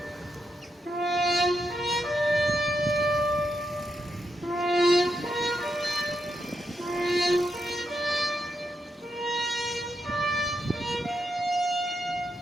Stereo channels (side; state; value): both; normal; correlation 0.83